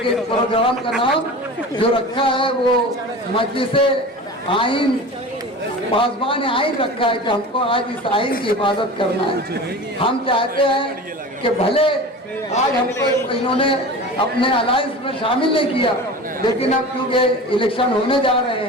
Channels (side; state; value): both; normal; correlation 0.34